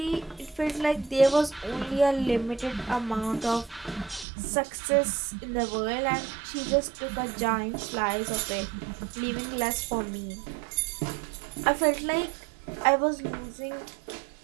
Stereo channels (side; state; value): left; drops out; at 4.2 s